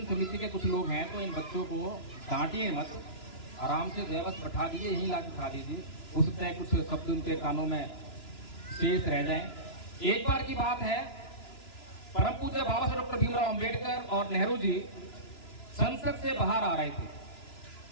समिति के कुछ लोग हैं, तो इन बच्चों को डांटिए मत, आराम से बस बैठा दीजिए, यहीं ला के खा दीजिए, हो सकता है कुछ शब्द उनके कानों में शेष रह जाए। एक बार की बात है, परम पूज्य बाबा साहब डॉक्टर भीमराव अंबेडकर और नेहरू जी संसद से बाहर आ रहे थे।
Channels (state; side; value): late; right; 3.0 ms